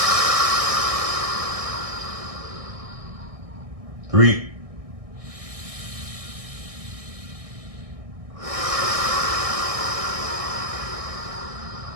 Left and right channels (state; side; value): late; left; 1.6 ms